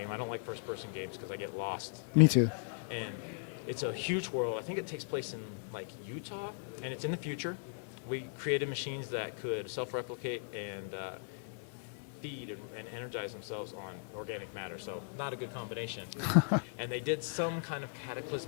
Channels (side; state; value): right; silent; digital silence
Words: I don't like first-person games because I get lost. Me too. And it's a huge world. I think it takes place in like Utah, and it's in the future. We created machines that could self-replicate and feed and energize themselves on organic matter. So not a good combination. And they did some kind of